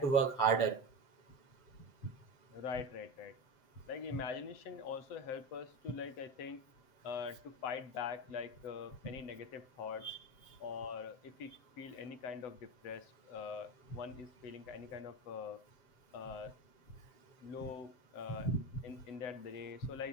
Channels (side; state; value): right; late; 7.7 ms